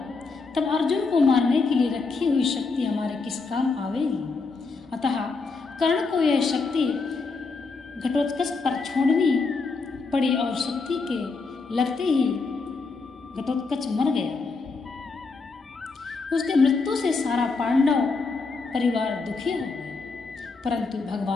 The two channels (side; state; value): right; quieter; 4.2 dB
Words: तब अर्जुन को मारने के लिए रखी हुई शक्ति हमारे किस काम आवेगी। अतः कर्ण को यह शक्ति घटोत्कच पर छोड़नी पड़ी और शक्ति के लगते ही घटोत्कच मर गया। उसके मृत्यु से सारा पांडव परिवार दुखी हो गए, परंतु